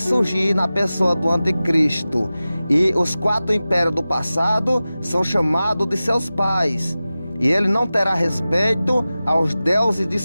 na pessoa do anticristo. E os 4 impérios do passado são chamados de seus pais, e ele não terá respeito aos deuses de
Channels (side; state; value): both; inverted; correlation -0.96